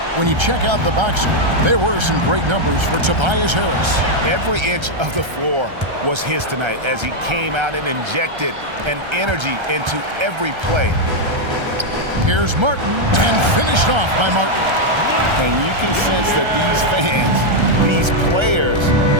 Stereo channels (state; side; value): late; left; 1.3 ms